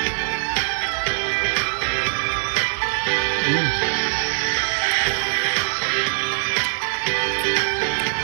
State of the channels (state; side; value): silent; left; 61 dB below the other